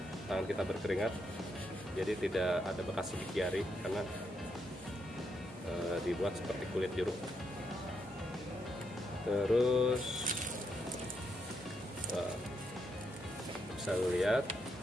tangan kita berkeringat, jadi tidak ada bekas sidik jari karena dibuat seperti kulit jeruk. Terus bisa lihat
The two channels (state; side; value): normal; both; correlation 0.79